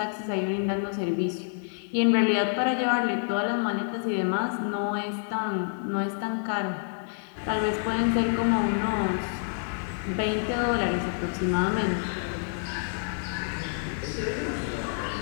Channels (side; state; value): right; silent; digital silence